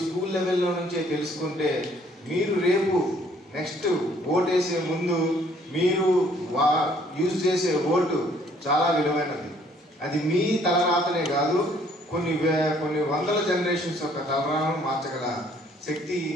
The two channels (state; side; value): normal; both; correlation 0.62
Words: స్కూల్ లెవెల్లో నుంచే తెలుసుకుంటే మీరు రేపు నెక్స్ట్ ఓటేసే ముందు మీరు యూజ్ చేసే ఓటు చాలా విలువైనది. అది మీ తలరాతనే కాదు, కొన్ని వందల జనరేషన్స్ యొక్క తలరాతను మార్చగల శక్తి